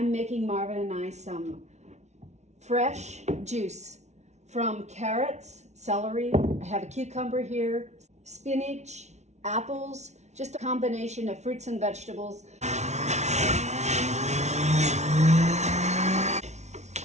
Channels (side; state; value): left; late; 0.32 ms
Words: making Marvin and I some fresh juice from carrots, celery, I have a cucumber here, spinach, apples, just a combination of fruits and vegetables.